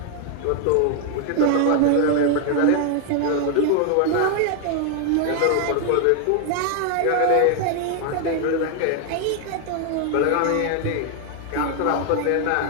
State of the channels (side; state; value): both; different; correlation 0.00